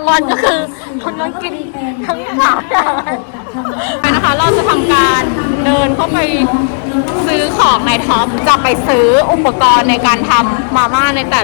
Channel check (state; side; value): silent; right; digital silence